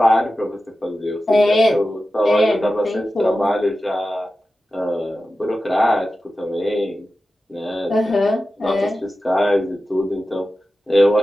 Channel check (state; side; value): normal; both; correlation 0.93